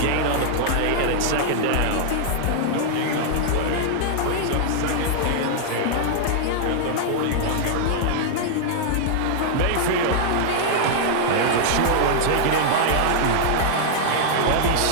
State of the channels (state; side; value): different; both; correlation -0.01